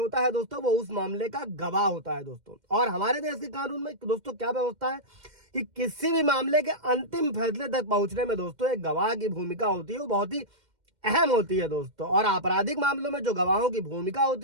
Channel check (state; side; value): late; left; 2.1 ms